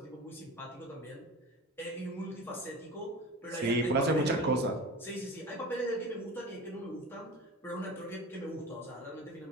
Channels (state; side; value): normal; both; correlation 0.34